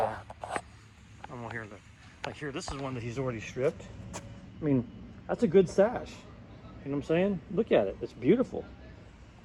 I'm here, like here, this is one that he's already stripped. I mean, that's a good sash. You know what I'm saying? Look at it, it's beautiful.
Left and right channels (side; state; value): both; identical; correlation 1.00